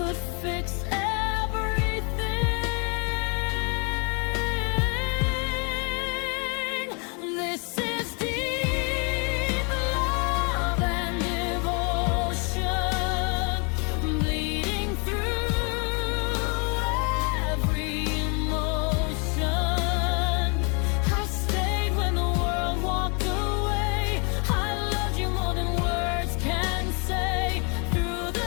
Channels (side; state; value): right; quieter; 34.3 dB